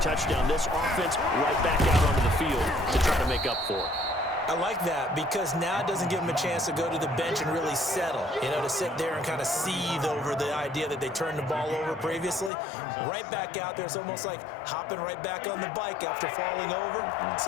touchdown. This offense right back out onto the field to try to make up for it. I like that because now it doesn't give them a chance to go to the bench and really settle, to sit there and kind of seethe over the idea that they turned the ball over previously. Right back out there, it's almost like hopping right back on the bike after falling over.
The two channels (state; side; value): drops out; right; at 12.5 s